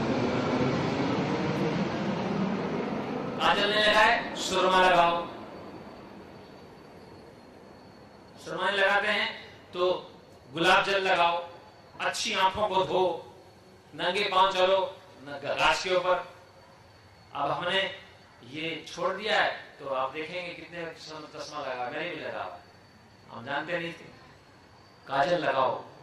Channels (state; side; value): identical; both; correlation 1.00